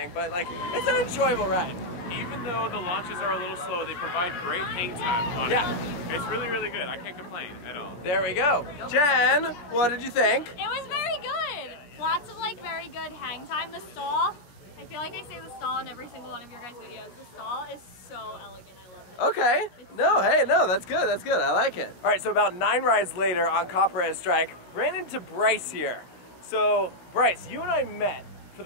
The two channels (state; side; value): late; right; 17 ms